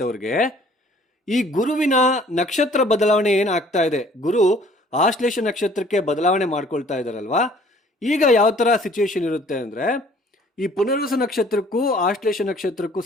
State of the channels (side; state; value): both; normal; correlation 0.55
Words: ಈ ಗುರುವಿನ ನಕ್ಷತ್ರ ಬದಲಾವಣೆ ಏನಾಗ್ತಾ ಇದೆ, ಗುರು ಆಶ್ಲೇಷ ನಕ್ಷತ್ರಕ್ಕೆ ಬದಲಾವಣೆ ಮಾಡ್ಕೊಳ್ತಾ ಇದ್ದಾರಲ್ವಾ, ಈಗ ಯಾವ ಥರ ಸಿಚುವೇಶನ್ ಇರುತ್ತೆ ಅಂದರೆ, ಈ ಪುನರ್ವಸು ನಕ್ಷತ್ರಕ್ಕೂ ಆಶ್ಲೇಷ ನಕ್ಷತ್ರಕ್ಕೂ